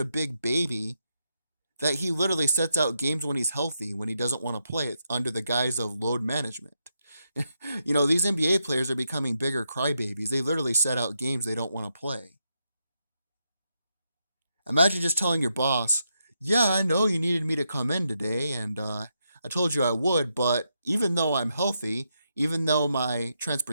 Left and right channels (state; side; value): inverted; both; correlation -0.82